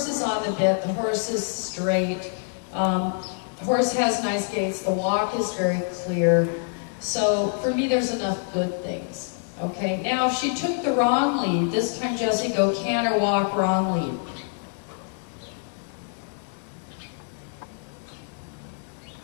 is on the bit, the horse is straight, the horse has nice gaits, the walk is very clear. So for me, there's enough good things. Okay, now if she took the wrong lead, this time Jessie, go canter, walk, wrong lead.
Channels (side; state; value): right; silent; 59 dB below the other